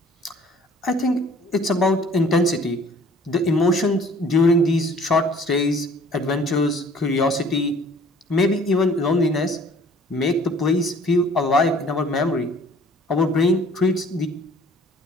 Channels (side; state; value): both; normal; correlation 0.54